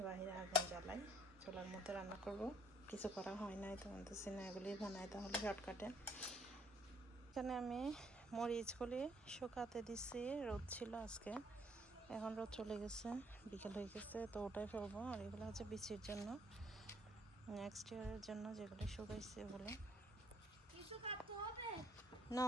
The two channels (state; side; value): normal; both; correlation 0.65